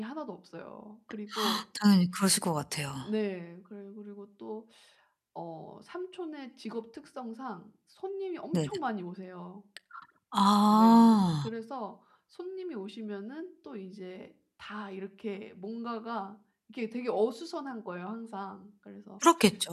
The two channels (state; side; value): identical; both; correlation 1.00